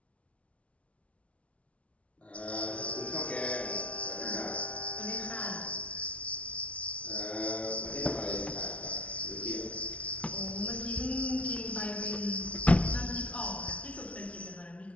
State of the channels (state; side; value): late; right; 0.063 ms